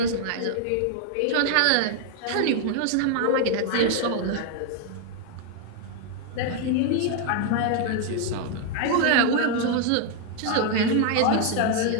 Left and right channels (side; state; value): both; different; correlation 0.00